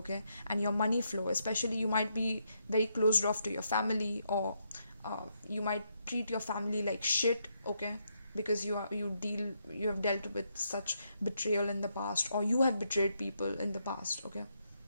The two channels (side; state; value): both; inverted; correlation -0.79